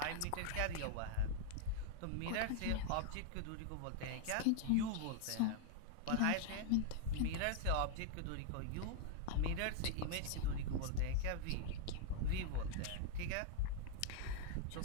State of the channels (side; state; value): both; different; correlation 0.00